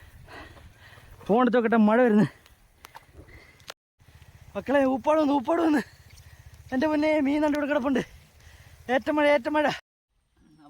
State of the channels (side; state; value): both; identical; correlation 1.00